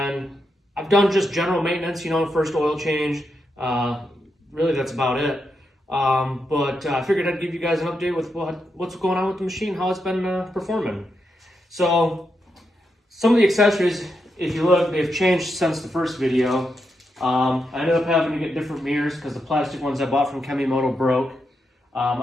I've done just general maintenance, first oil change. Really, that's about it. But I figured I'd give you guys an update with what's going on with the machine, how it's been performing. So some of the accessories, if you look, they've changed since the first video. I ended up having to get different mirrors because the plastic ones I bought from Kemimoto broke.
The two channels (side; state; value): both; normal; correlation 0.84